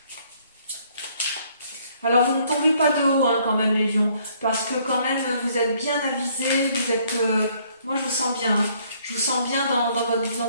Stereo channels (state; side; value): inverted; both; correlation -0.64